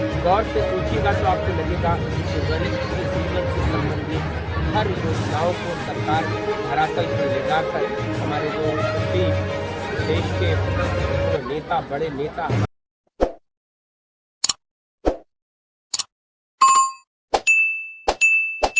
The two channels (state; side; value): identical; both; correlation 1.00